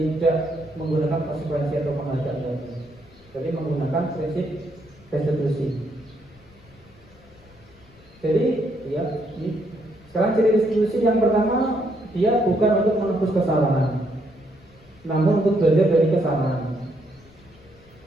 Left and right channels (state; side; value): noise; left; rumble, 26 dB below the sound